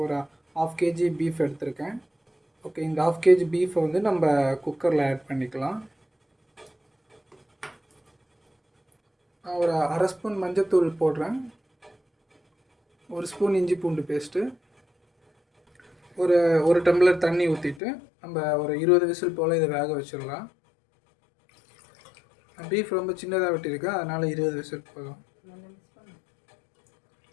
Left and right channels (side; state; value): right; drops out; at 17.8 s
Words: ஒரு 1/2 kg பீஃப் எடுத்திருக்கேன். ஓகே, இந்த 1/2 kg பீஃபை வந்து நம்ம குக்கரில் ஆட் பண்ணிக்கலாம். நான் ஒரு 1/2 ஸ்பூன் மஞ்சத்தூள் போடுறேன். 1 ஸ்பூன் இஞ்சி பூண்டு பேஸ்ட்டு, ஒரு டம்ளர் தண்ணி ஊற்றிட்டு நம்ம ஒரு 20 விசில் போல் இதை வேக வச்சிடலாம். பீஃப் ரொம்ப சின்னதாக வெட்டியிருக்கேன், அதனால் 20 விசில் போதும்.